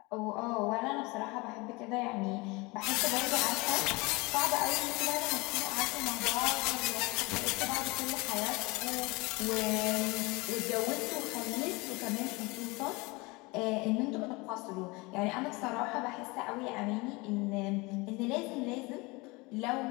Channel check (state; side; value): quieter; right; 24.9 dB